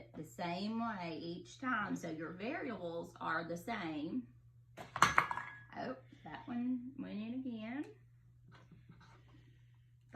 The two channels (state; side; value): identical; both; correlation 1.00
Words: the same way each time so your variables are the same. Oh, that one went in again.